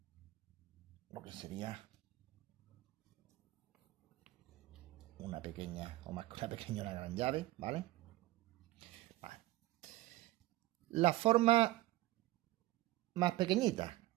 lo que sería una pequeña, o más que una pequeña, una gran llave, ¿vale? Vale. La forma más pequeñita,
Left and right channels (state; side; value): quieter; left; 17.6 dB